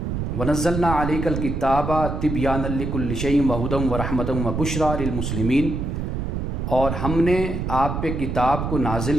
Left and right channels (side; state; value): right; noise; rumble, 3 dB below the sound